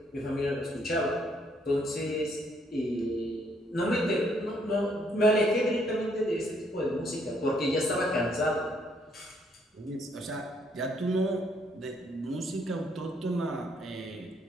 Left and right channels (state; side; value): normal; both; correlation 0.69